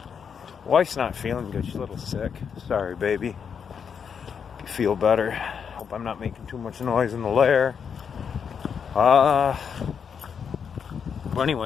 Wife's not feeling good, she's a little sick. Sorry, baby. Hope you feel better. Hope I'm not making too much noise in the lair. Well,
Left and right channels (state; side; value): quieter; right; 6.9 dB